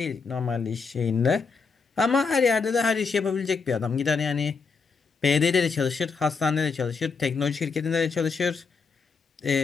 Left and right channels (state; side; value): quieter; right; 5.0 dB